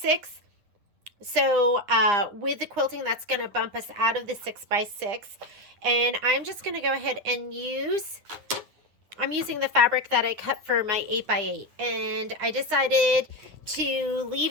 So with the quilting, that's going to bump us out of the 6x6. And I'm just going to go ahead and I'm using the fabric that I cut for my 8x8. And I decided to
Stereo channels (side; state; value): left; late; 9.8 ms